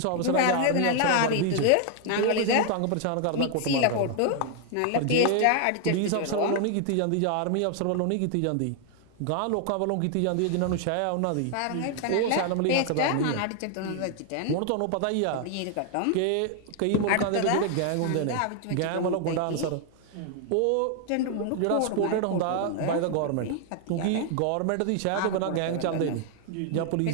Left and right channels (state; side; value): different; both; correlation 0.00